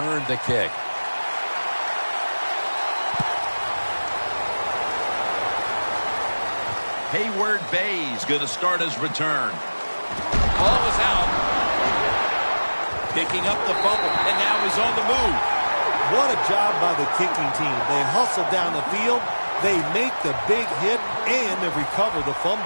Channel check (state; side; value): inverted; both; correlation -1.00